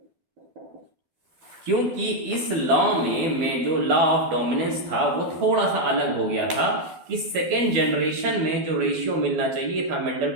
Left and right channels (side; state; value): left; late; 12 ms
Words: क्योंकि इस लॉ में जो लॉ ऑफ डोमिनेंस था वो थोड़ा सा अलग हो गया था कि सेकेंड जनरेशन में जो रेशियो मिलना चाहिए था मेंडल